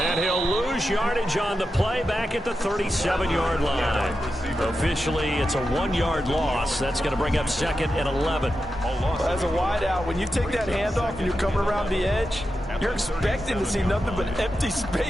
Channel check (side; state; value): both; normal; correlation 0.90